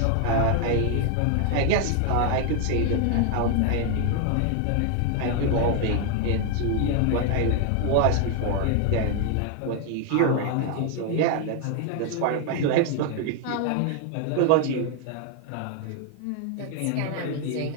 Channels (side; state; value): both; different; correlation 0.00